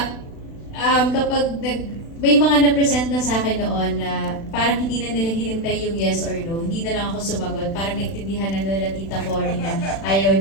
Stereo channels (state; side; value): late; right; 36 ms